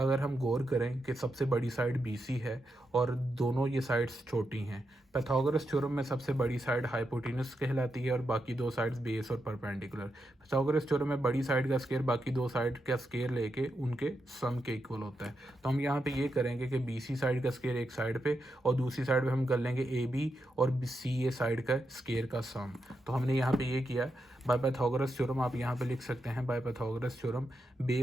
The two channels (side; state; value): both; normal; correlation 0.85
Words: हम गौर करें कि सबसे बड़ी साइड BC है और दोनों ये साइड्स छोटी हैं, पाइथागोरस थ्योरम में सबसे बड़ी साइड हाइपोटेनस कहलाती है और बाकी दो साइड्स बेस और परपेंडिकुलर। पाइथागोरस थ्योरम में बड़ी साइड का स्केयर बाकी दो साइड का स्केयर लेके उनके सम के इक्वल होता है। तो हम यहाँ पे ये करेंगे कि BC साइड का स्केयर एक साइड पे और दूसरी साइड पे हम कर लेंगे AB और CA साइड का स्केयर का सम। तो हमने यहाँ पे ये किया। बाय पाइथागोरस थ्योरम आप यहाँ पे लिख सकते हैं, by Pythagoras theorem